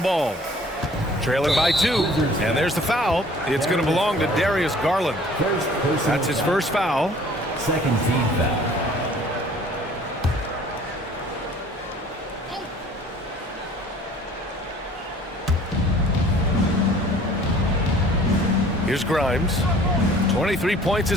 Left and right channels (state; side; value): normal; both; correlation 0.52